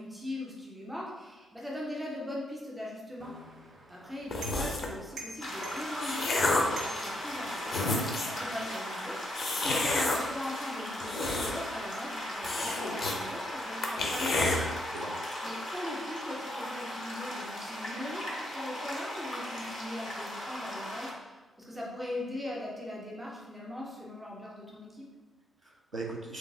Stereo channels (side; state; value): both; normal; correlation 0.77